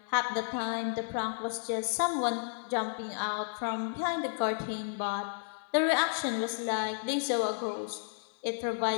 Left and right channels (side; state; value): right; silent; 56 dB below the other